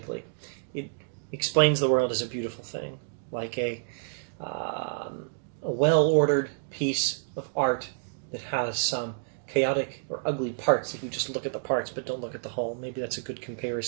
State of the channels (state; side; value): silent; left; digital silence